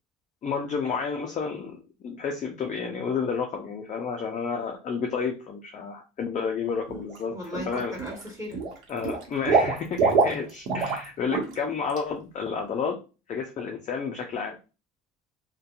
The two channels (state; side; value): normal; both; correlation 0.31